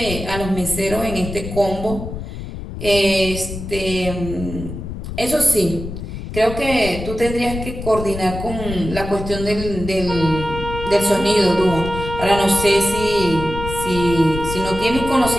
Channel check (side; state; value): left; noise; rumble, 8 dB below the sound